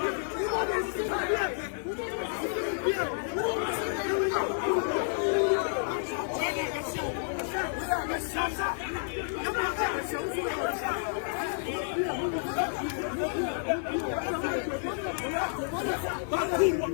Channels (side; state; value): right; silent; 58 dB below the other